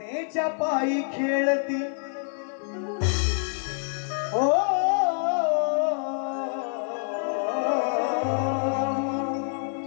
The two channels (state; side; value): silent; right; digital silence